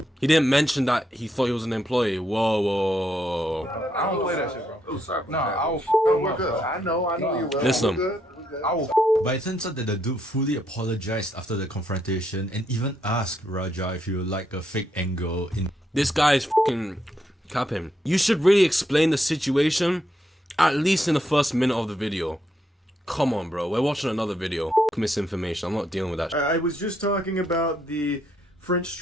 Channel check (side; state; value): both; normal; correlation 0.77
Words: He didn't mention that he thought he was an employee. Whoa. I don't play that shit, bro. Nah, I will fuck him up, bro. I know you will. Listen. I will. But it turns out that the dude fully apologized after the confrontation and even asked Raja if he would like a fake angle in. This guy is fucking capping. You should really explain the situation, at least in the first minute of the video. Come on, bro. We're watching another video. Misinformation. I'm not dealing with that. I was just talking about the French